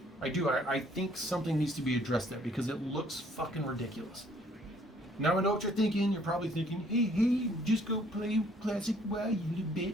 I do. I think something needs to be addressed there because it looks fucking ridiculous. Now I know what you're thinking. You're probably thinking, hey, just go play Classic WoW, you little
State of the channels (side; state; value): both; normal; correlation 0.62